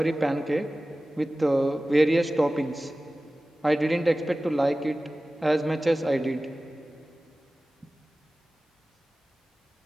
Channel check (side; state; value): both; normal; correlation 0.97